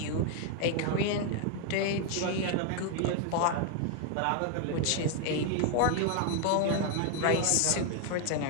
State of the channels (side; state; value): both; different; correlation 0.01